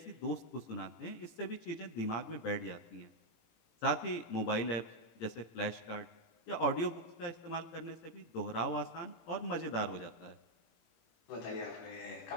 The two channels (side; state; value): right; late; 18 ms